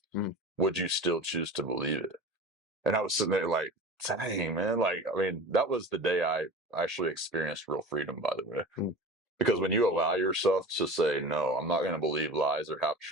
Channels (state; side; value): normal; both; correlation 0.35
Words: Would you still choose to believe it? And I was sitting there like, dang, man. Like, I mean, that was the day I actually experienced real freedom, by the way. Because when you allow yourself to say, no, I'm not going to believe lies or half